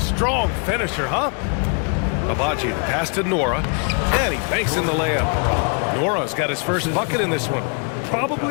finisher, huh? Abaji pass to Nora, and he banks in the layup. Nora's got his first bucket in this one.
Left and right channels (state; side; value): quieter; right; 39.0 dB